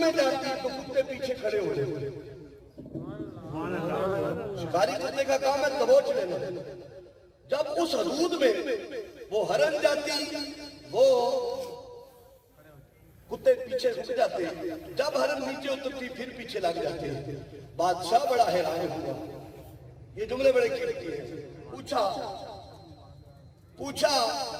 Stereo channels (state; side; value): identical; both; correlation 1.00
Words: جاتی تو کتے پیچھے کھڑے ہو جاتے. شکاری کتے کا کام ہے دبوچ لینا. جب اس حدود میں وہ ہرن جاتی وہ کتے پیچھے رک جاتے. جب ہرن نیچے اترتی پھر پیچھے لگ جاتے. بادشاہ بڑا حیران ہوا. یہ جملے بڑے قیمتی ہیں. پوچھا